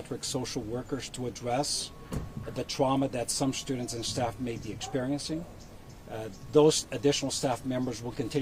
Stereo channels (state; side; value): identical; both; correlation 1.00